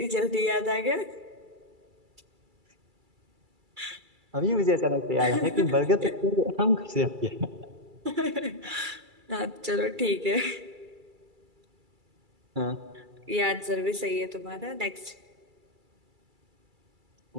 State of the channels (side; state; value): left; late; 2.3 ms